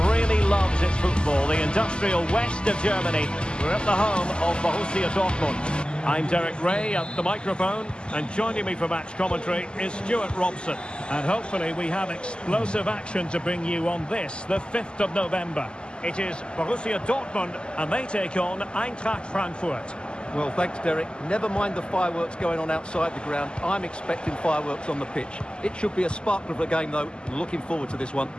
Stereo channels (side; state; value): right; late; 0.049 ms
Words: really loves its football, the industrial west of Germany. We're at the home of Borussia Dortmund. I'm Derek Ray at the microphone, and joining me for match commentary is Stuart Robson. And hopefully we have explosive action to bring you on this, the 5th of November. It is Borussia Dortmund, and they take on Eintracht Frankfurt. Well, thanks, Derek. Never mind the fireworks going on outside the ground. I'm expecting fireworks on the pitch. It should be a sparkler of a game, though. Looking forward to this one.